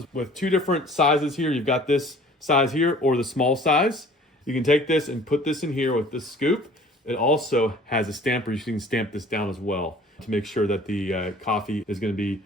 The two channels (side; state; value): both; normal; correlation 0.50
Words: with two different sizes here. You've got this size here or the small size. You can take this and put this in here with this scoop. It also has a stamper. You can stamp this down as well to make sure that the coffee is going to be